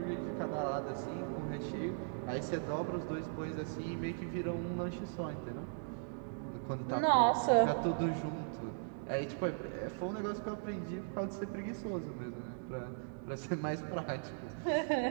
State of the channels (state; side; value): silent; left; digital silence